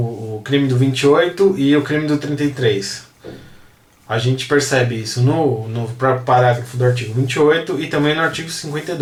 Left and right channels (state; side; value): identical; both; correlation 1.00